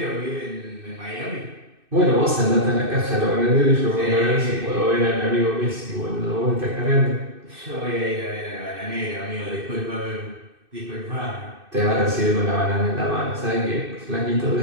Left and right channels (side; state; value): left; late; 2.6 ms